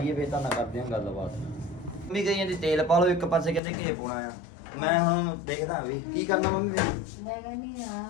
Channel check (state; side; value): drops out; right; at 3.6 s